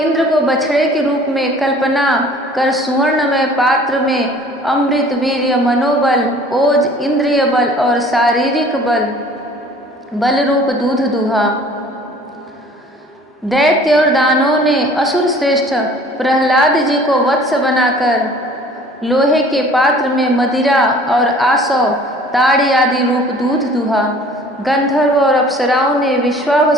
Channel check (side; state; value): both; normal; correlation 0.50